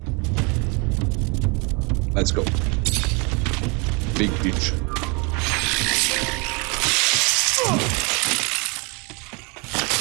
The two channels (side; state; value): left; quieter; 30.9 dB